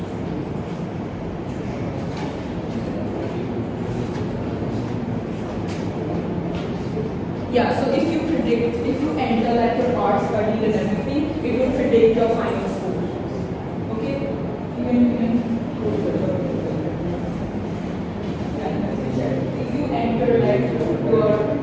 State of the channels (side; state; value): both; identical; correlation 1.00